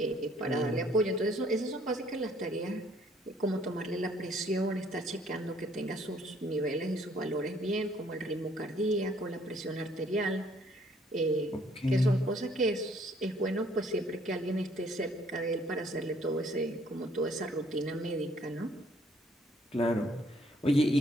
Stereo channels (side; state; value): both; normal; correlation 0.63